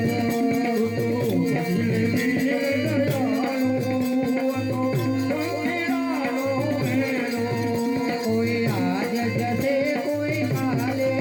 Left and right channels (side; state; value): both; identical; correlation 1.00